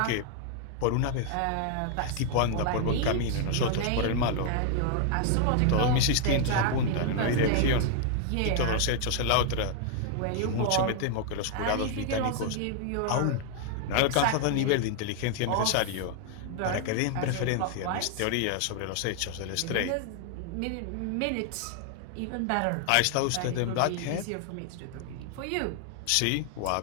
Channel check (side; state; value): both; different; correlation 0.00